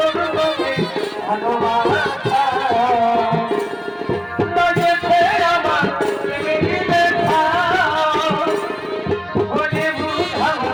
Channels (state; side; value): identical; both; correlation 1.00